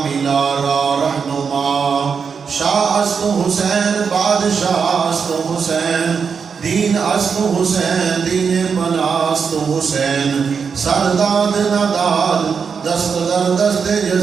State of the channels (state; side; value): quieter; left; 6.0 dB